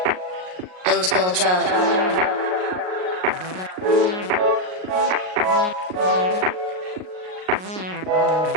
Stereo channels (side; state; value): left; late; 38 ms